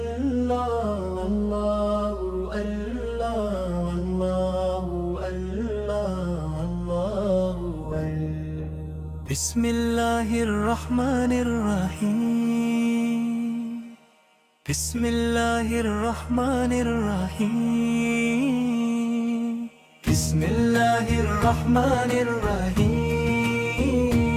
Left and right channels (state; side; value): identical; both; correlation 1.00